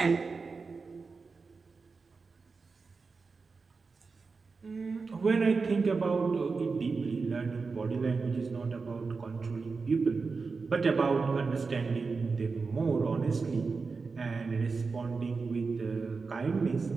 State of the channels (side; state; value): left; quieter; 4.5 dB